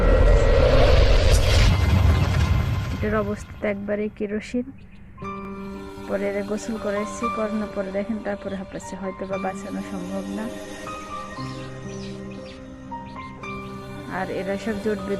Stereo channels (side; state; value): both; identical; correlation 1.00